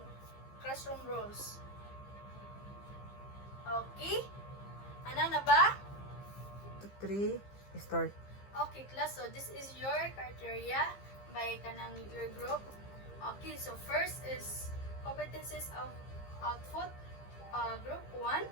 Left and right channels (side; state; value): right; late; 15 ms